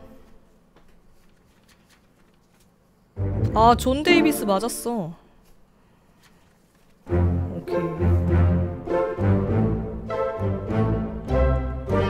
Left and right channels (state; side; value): identical; both; correlation 1.00